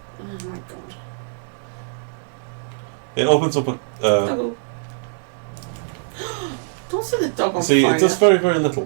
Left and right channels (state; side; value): silent; left; digital silence